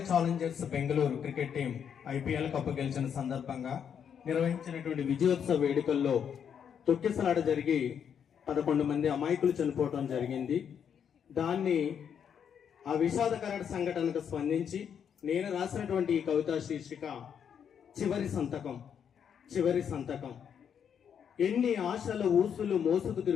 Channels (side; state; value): right; quieter; 7.9 dB